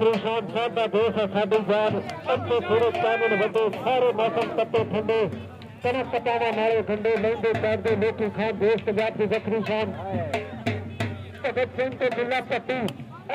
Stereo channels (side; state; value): both; identical; correlation 1.00